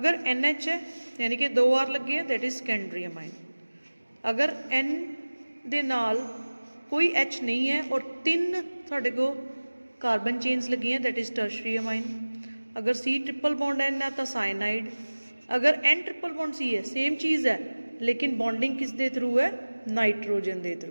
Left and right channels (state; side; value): inverted; both; correlation -1.00